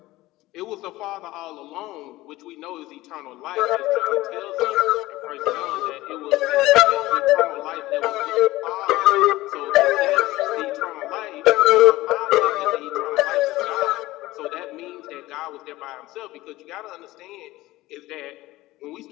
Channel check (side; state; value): right; quieter; 18.0 dB